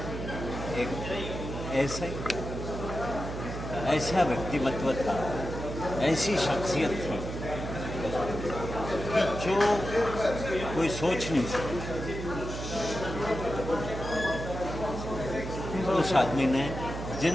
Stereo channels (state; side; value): noise; right; hum, 6 dB below the sound